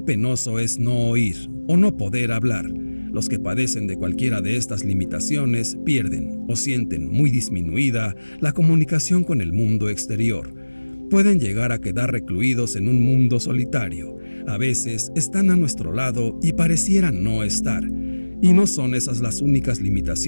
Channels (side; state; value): both; inverted; correlation -1.00